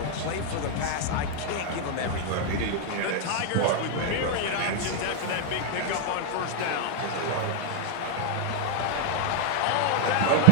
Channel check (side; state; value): both; different; correlation 0.00